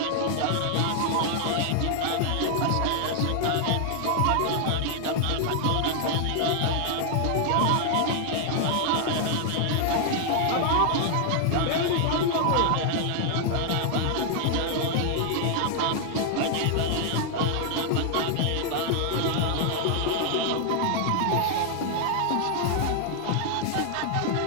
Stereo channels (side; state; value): both; different; correlation 0.00